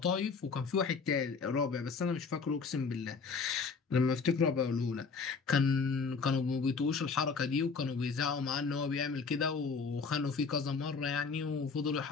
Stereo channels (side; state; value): right; quieter; 4.9 dB